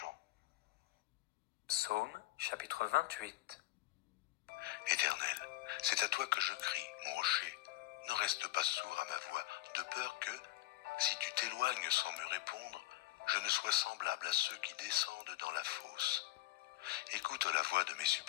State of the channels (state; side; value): quieter; right; 16.9 dB